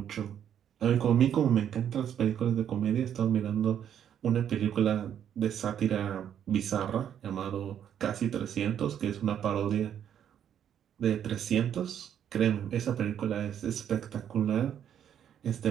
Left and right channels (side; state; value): left; quieter; 9.4 dB